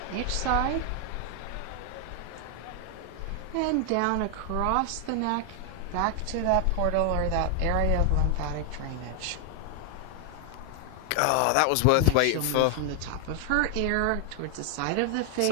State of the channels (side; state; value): both; different; correlation 0.00